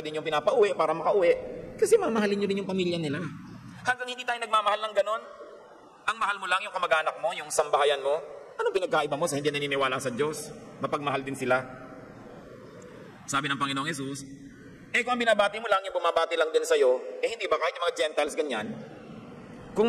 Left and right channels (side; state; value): both; identical; correlation 1.00